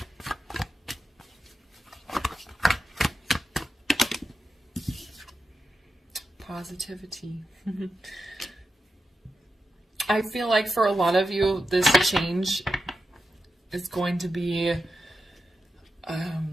Positivity. I feel like for a lot of you, this change is going to be, I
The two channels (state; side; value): normal; both; correlation 0.90